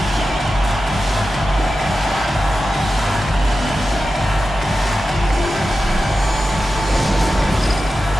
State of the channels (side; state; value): both; normal; correlation 0.92